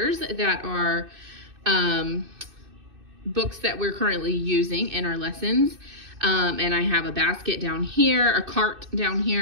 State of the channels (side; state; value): left; late; 2.6 ms